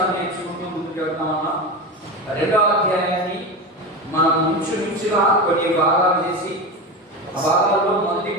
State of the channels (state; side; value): normal; both; correlation 0.23